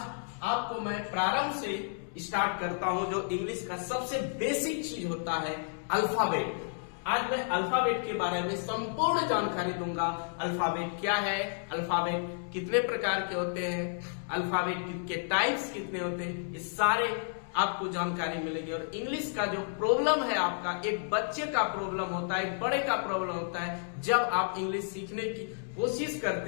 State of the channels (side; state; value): right; silent; 57 dB below the other